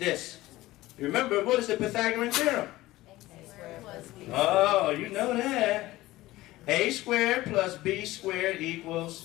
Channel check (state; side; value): quieter; right; 17.5 dB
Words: Remember, what is the Pythagorean theorem? Oh, you know that. A squared plus B squared